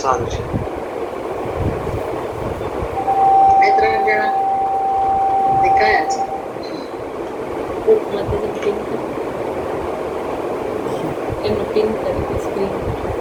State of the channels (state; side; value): identical; both; correlation 1.00